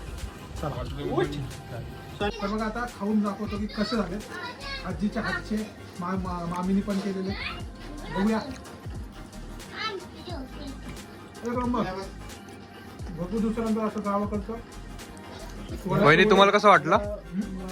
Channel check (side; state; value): both; identical; correlation 1.00